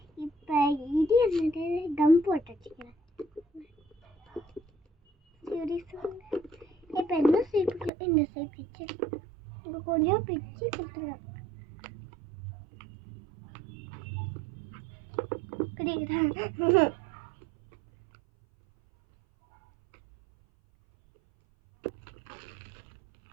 இப்போ இது என்னது கம் போட்டு வச்சுக்கிறேன். சரி சொல்லுங்க. இப்போ என்ன ஷேப்புக்கு இந்த ஷேப் பிச்சு இப்போ கொஞ்சம் பிச்சு கொடுத்துருவேன். குடிக்கிறேன்.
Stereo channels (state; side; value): drops out; left; at 7.9 s